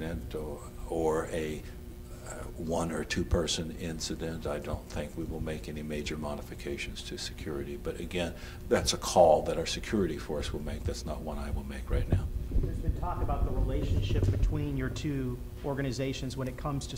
or a one or two person incident, I don't think we will make any major modifications to security. But again, that's a call that our security force will make. That's not one I will make right now. There's been talk about the relationship between your two organizations when it comes to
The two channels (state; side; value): identical; both; correlation 1.00